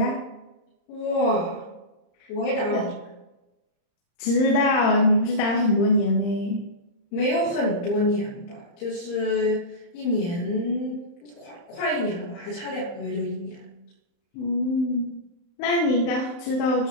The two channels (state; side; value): late; right; 35 ms